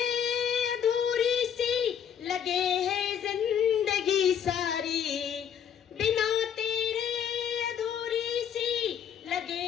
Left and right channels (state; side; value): quieter; right; 8.5 dB